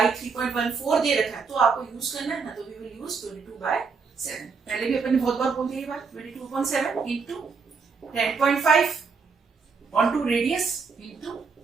3.14 दे रखा है तो आपको यूज करना है ना, तो वी विल यूज 22/7. पहले भी अपन ने बहुत बार बोल दिया ये बात. 22/7 into 10.5 on two radius into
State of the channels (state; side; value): quieter; left; 5.1 dB